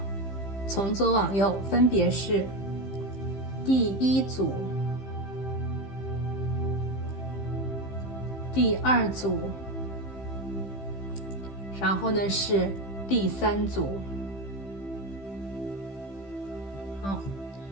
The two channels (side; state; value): right; late; 15 ms